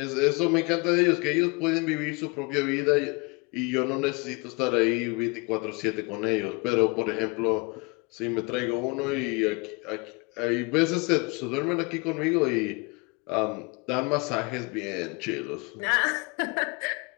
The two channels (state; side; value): quieter; right; 28.8 dB